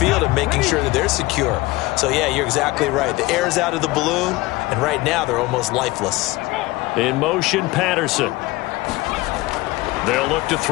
and making sure that they're secure. So, yeah, you're exactly right. The air's out of the balloon, and right now they're almost lifeless. In motion, Patterson. They'll look to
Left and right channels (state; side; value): quieter; right; 20.3 dB